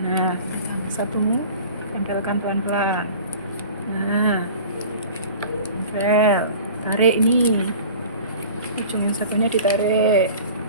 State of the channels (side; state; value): both; inverted; correlation -0.42